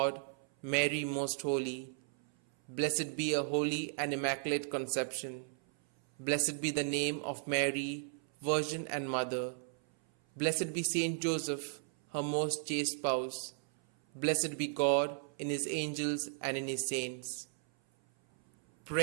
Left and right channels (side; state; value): left; silent; 54 dB below the other